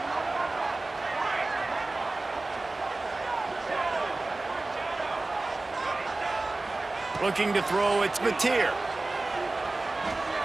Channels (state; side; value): quieter; left; 3.1 dB